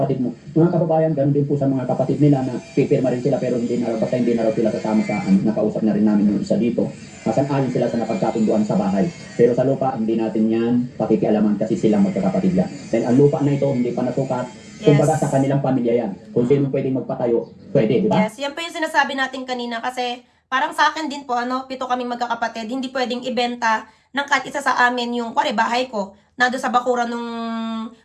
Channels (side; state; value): both; identical; correlation 1.00